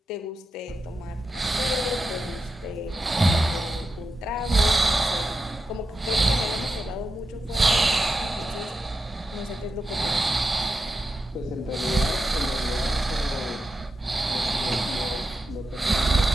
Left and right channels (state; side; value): normal; both; correlation 0.89